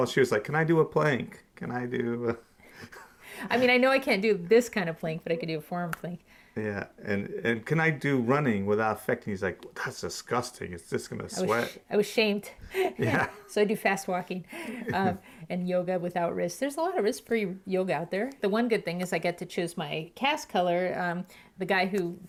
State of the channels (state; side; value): identical; both; correlation 1.00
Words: she was like, can I do a plank? Can I do I mean, I know I can't do this kind of plank, but I could do a forearm plank. Yeah, and can I do running without affecting? He's like, that's disgusting. It's just going to sweat. I was shamed. Yeah. So I do fast walking and yoga without wrists. There's a lot of wrist-free yoga out there. The one good thing is I get to choose my cast color. The guy who